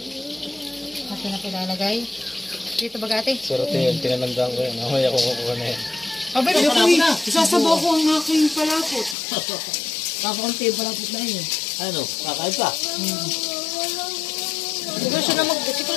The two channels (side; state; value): right; drops out; at 9.2 s